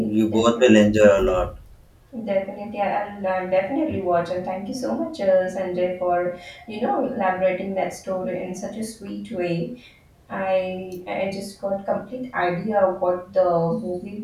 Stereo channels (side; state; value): both; identical; correlation 1.00